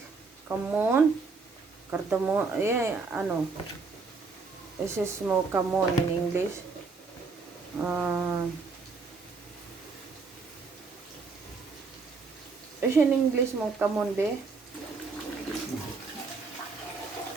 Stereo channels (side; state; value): left; quieter; 4.4 dB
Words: kamon, cardamom, this is mo kamon in English. In English mo kamon, be.